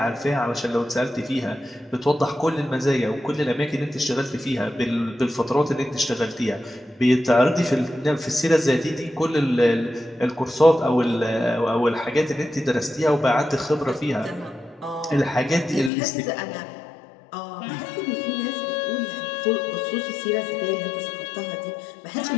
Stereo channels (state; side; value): drops out; right; at 15.9 s